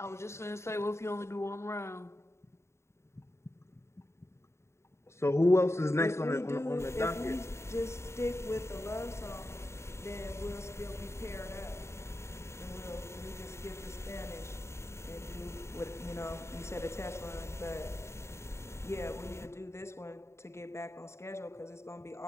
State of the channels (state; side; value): late; right; 0.13 ms